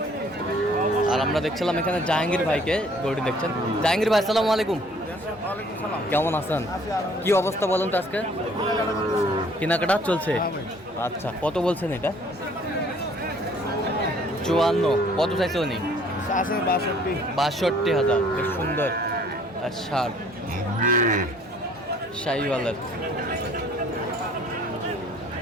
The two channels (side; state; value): both; normal; correlation 0.57